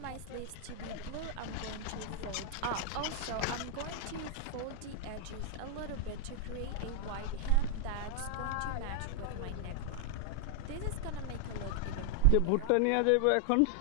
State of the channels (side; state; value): both; different; correlation 0.00